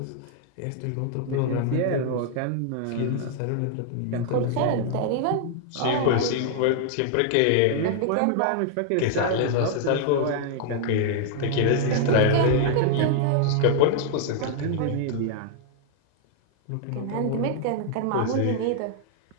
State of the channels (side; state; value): both; different; correlation -0.01